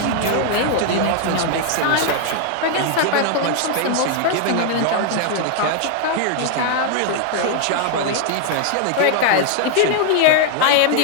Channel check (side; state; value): both; different; correlation 0.00